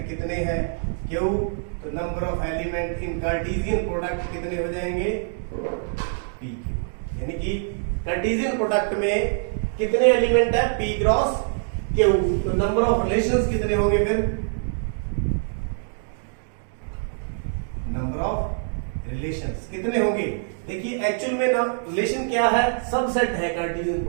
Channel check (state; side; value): silent; left; digital silence